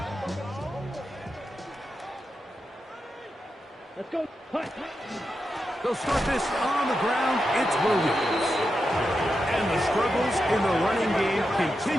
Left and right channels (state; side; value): normal; both; correlation 0.88